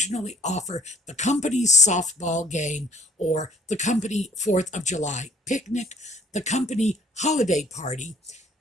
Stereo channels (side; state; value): both; normal; correlation 0.59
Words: offer the company's softball game or the company 4th of July picnic, the company holiday party.